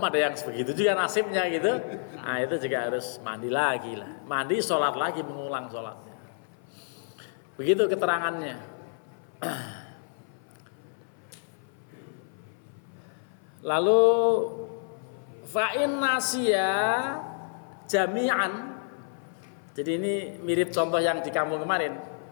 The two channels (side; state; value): right; silent; 55 dB below the other